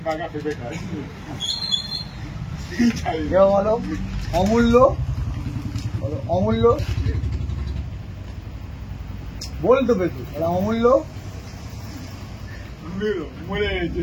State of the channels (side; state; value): both; identical; correlation 1.00